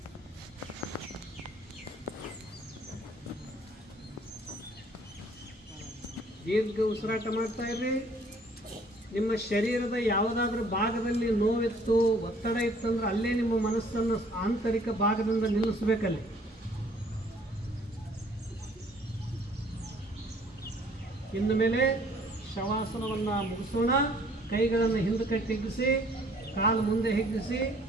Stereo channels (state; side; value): normal; both; correlation 0.58